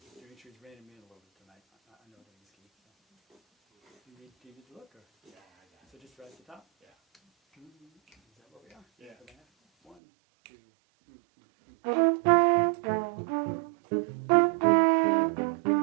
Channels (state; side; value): drops out; left; at 10.0 s